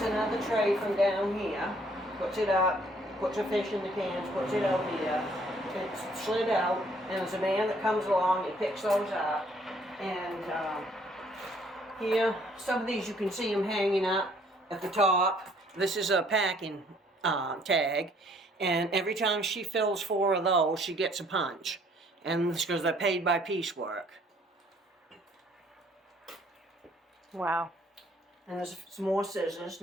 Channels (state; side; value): normal; both; correlation 0.62